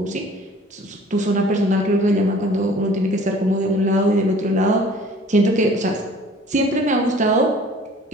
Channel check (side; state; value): both; normal; correlation 0.50